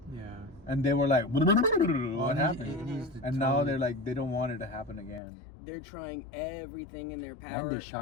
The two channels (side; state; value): right; drops out; at 5.2 s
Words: Yeah. and they were like, "What Well, happened?" it needs to And now totally- they're like, they don't want it to happen again. They're trying everything in their power. And they